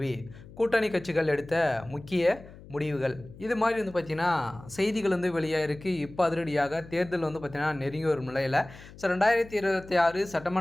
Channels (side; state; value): left; noise; hum, 19 dB below the sound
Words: கூட்டணி கட்சிகள் எடுத்த முக்கிய முடிவுகள், இது மாதிரி பார்த்தீங்கன்னா செய்திகள் வெளியாகிருக்கு. இப்போ அதிரடியாக தேர்தல் பார்த்தீங்கன்னா நெருங்கி வரும் நிலையில், 2026